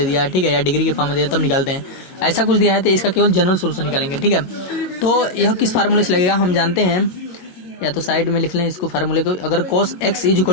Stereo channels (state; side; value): late; right; 22 ms